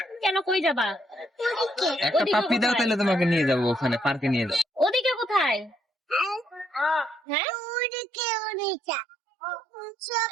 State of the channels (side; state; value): left; drops out; at 7.2 s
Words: কেন কই যাবা একটা ওদিকে পাপি দাও, কোথায়? তাহলে তোমাকে নিয়ে যাবো ওখানে, পার্কে নিয়ে যাবো। ওদিকে কোথায় হ্যাঁ